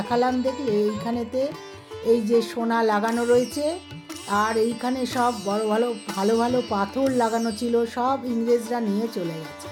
দেখলে এইখানেতে এই যে সোনা লাগানো রয়েছে, আর এইখানে সব বড় ভালো ভালো ভালো পাথর লাগানো ছিল, সব ইংরেজরা নিয়ে চলে গেছে।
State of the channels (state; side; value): identical; both; correlation 1.00